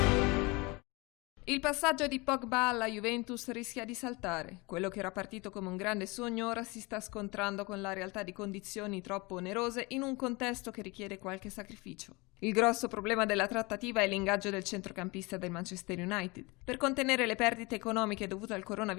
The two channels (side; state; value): right; quieter; 25.6 dB